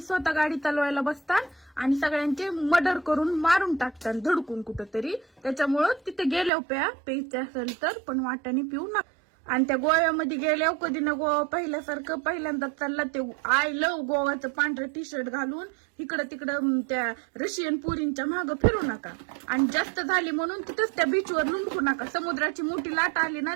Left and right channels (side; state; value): left; drops out; at 6.5 s